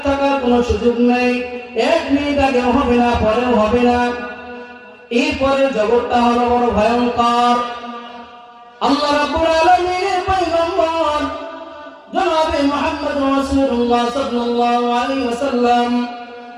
থাকার কোনো সুযোগ নেই, 1 মিনিট আগেও হবে না, পরেও হবে না। এরপরে জগৎটা হলো বড় ভয়ঙ্কর। আল্লাহ রাব্বুল আলামিনের পয়গম্বর জনাবে মুহাম্মদ রাসূলুল্লাহ সাল্লাল্লাহু আলাইহি ওয়াসাল্লাম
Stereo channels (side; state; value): both; identical; correlation 1.00